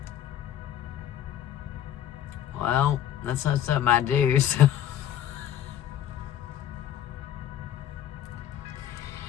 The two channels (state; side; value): quieter; right; 11.0 dB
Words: Well, that's not something I do, so